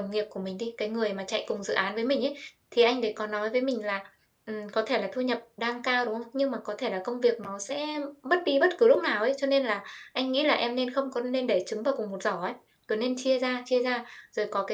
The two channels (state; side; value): identical; both; correlation 1.00